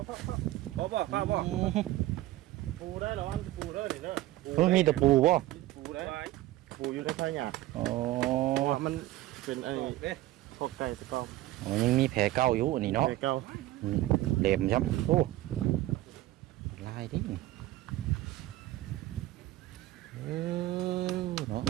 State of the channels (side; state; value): left; quieter; 16.3 dB